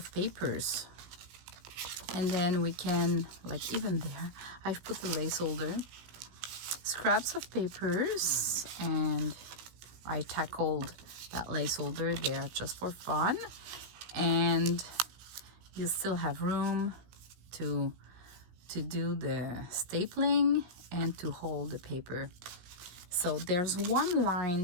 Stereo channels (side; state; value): left; late; 17 ms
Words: papers, and then we can, like, even there I've put the lace holder, scraps of papers, and I tackled that lace holder there just for fun. and you still have room to do the stapling and to hold the paper. So there's one